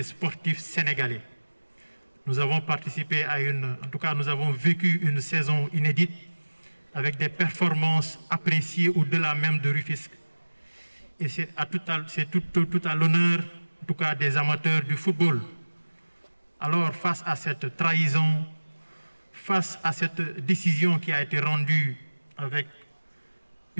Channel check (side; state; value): both; inverted; correlation -1.00